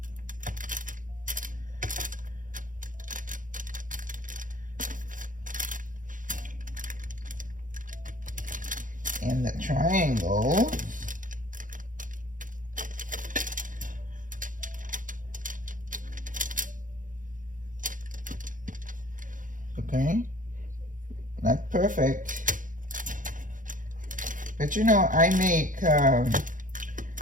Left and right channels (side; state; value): left; late; 0.38 ms